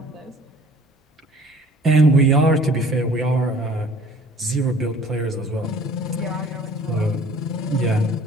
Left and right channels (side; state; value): both; normal; correlation 0.51